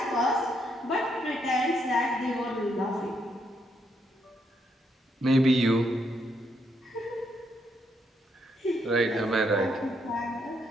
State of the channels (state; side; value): normal; both; correlation 0.76